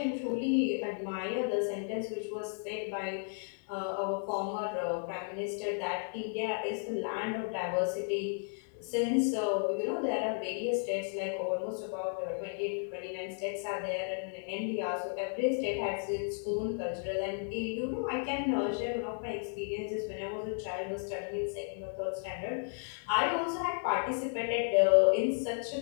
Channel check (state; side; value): silent; right; 55 dB below the other